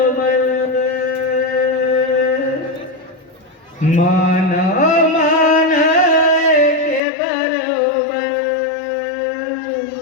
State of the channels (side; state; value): right; drops out; at 7.0 s